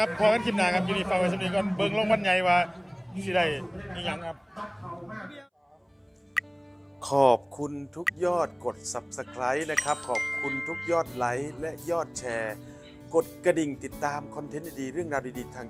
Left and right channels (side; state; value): both; identical; correlation 1.00